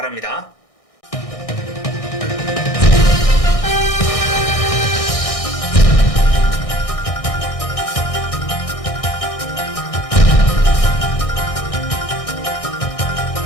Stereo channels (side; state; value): right; late; 1.6 ms